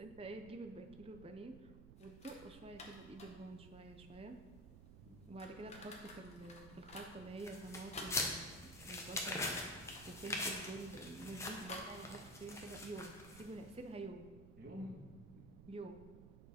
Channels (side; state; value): right; noise; rumble, 14 dB below the sound